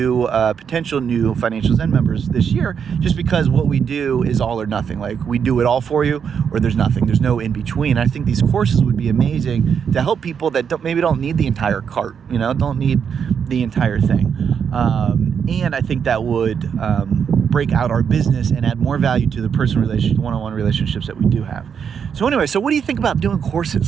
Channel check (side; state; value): left; quieter; 7.2 dB